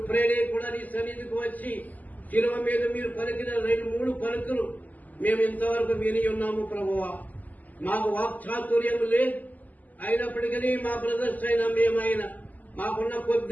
ప్రేరే కూడా నీ సన్నిధికి వచ్చి శిలువ మీద మీరు పలికిన 2-3 పలుకులు మేము ఇంతవరకు విని ఉన్నాము ప్రభువా. మాకు వాక్చాతుర్యం లేదు, అయినప్పటికీ మా బ్రదర్స్ అయినా మేమైనా మాకున్న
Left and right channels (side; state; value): right; late; 0.080 ms